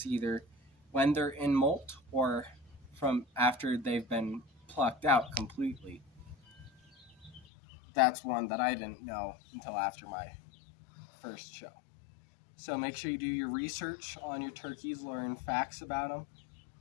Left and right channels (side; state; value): right; drops out; at 7.5 s